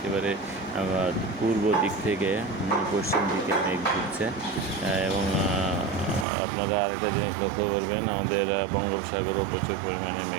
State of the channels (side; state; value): left; drops out; at 6.2 s